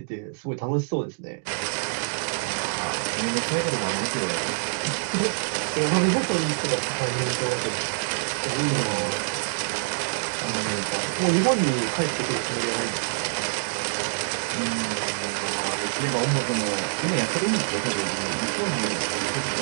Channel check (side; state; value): left; silent; digital silence